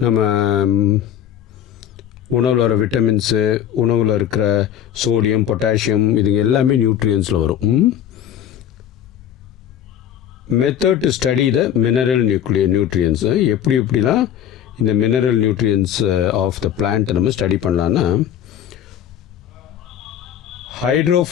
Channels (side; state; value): right; quieter; 10.1 dB